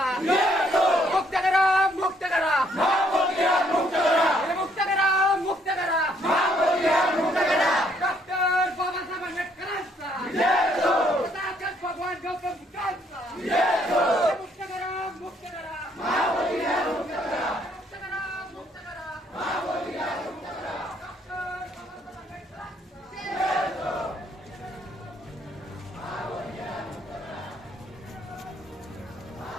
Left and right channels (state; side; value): normal; both; correlation 0.68